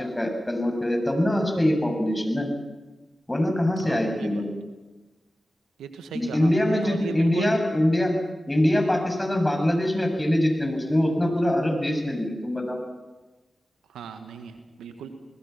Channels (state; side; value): normal; both; correlation 0.95